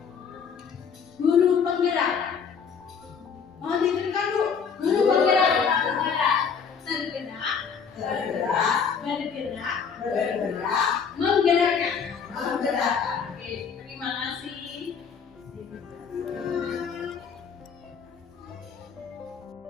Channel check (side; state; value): right; quieter; 6.3 dB